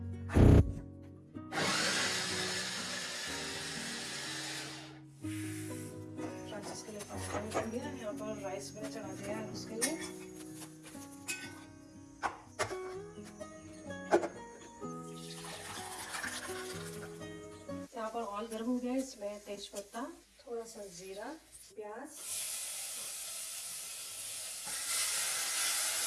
फ्रांसिस के लिए पास्ता कर दिया। यहाँ पर राइस मैंने चढ़ा दिया है उसके लिए। यहाँ पर ऑयल गर्म हो गया है। इसमें तेज पत्ता, थोड़ा सा जीरा,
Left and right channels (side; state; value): both; identical; correlation 1.00